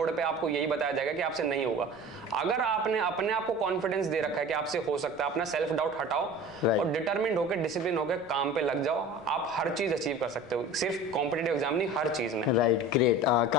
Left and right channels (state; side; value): noise; right; rumble, 26 dB below the sound